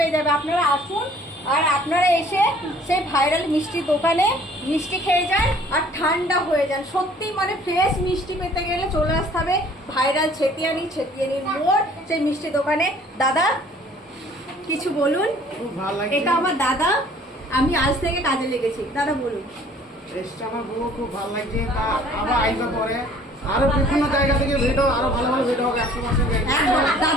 যাবে। আপনারা আসুন আর আপনারা এসে সেই ভাইরাল মিষ্টির দোকানে মিষ্টি খেয়ে যান আর ঠান্ডা হয়ে যান। সত্যি মানে ফ্রেশ মিষ্টি পেতে গেলে চলে আসতে হবে ভাইরাল ছেতিয়ানির মোড় সেই মিষ্টি দোকানে। দাদা কিছু বলুন। এটা আমার দাদা, আমি আজ থেকে কাজে লেগেছি। দাদা বলুন। আমার বউ খুব ভালো লাগছে, তা আবার আইসা পরে আরো বিভিন্ন জায়গা থেকে ভিডিও, আরো ভালো ভালো ভিডিও হবে 100 মাসে।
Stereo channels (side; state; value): both; normal; correlation 0.55